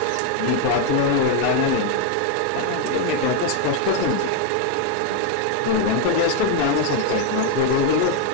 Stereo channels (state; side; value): different; both; correlation 0.01